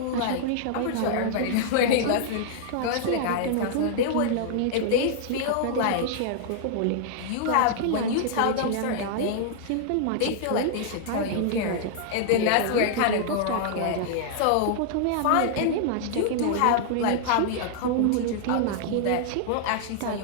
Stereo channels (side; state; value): both; different; correlation -0.01